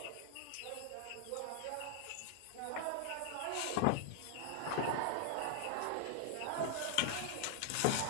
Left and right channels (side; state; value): both; different; correlation 0.00